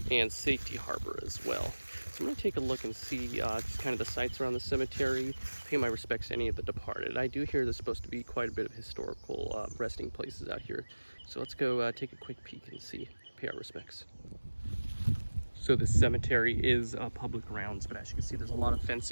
and Safety Harbor as well. So I'm going to take a look and see just kind of the sights around the cemetery, pay my respects to any of the departed. I do hear there's supposed to be quite a bit of historical resting places out here. So let's go take a quick peek and see, pay our respects. So this cemetery is public grounds, but as you can see, there's a lot of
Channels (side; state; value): both; inverted; correlation -1.00